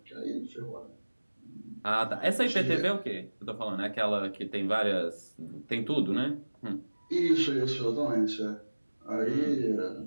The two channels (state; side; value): inverted; both; correlation -1.00